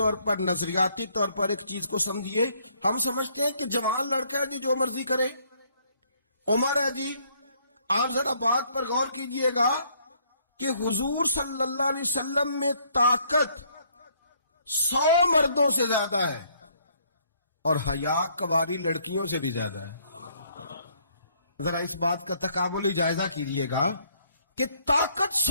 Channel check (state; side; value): inverted; both; correlation -0.66